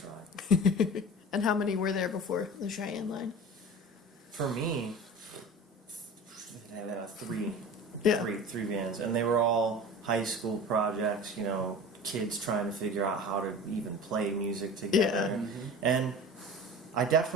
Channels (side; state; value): both; normal; correlation 0.36